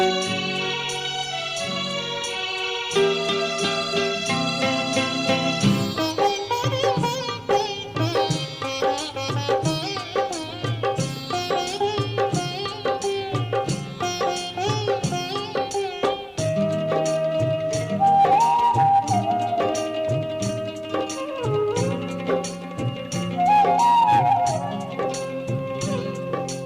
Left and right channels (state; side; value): identical; both; correlation 1.00